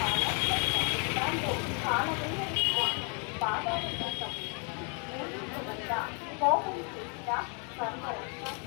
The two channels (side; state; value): right; quieter; 37.5 dB